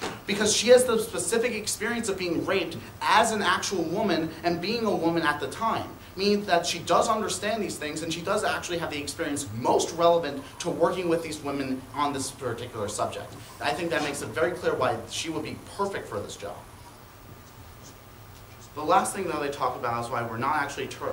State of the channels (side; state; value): both; identical; correlation 1.00